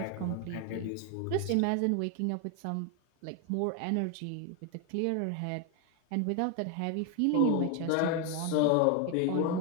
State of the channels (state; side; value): different; both; correlation 0.01